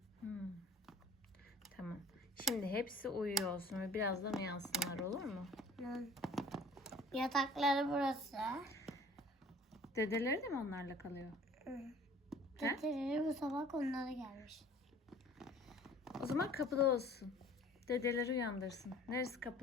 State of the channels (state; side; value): normal; both; correlation 0.49